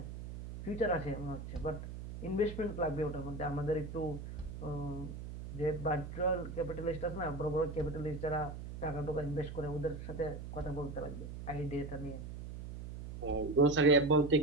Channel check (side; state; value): right; noise; hum, 9 dB below the sound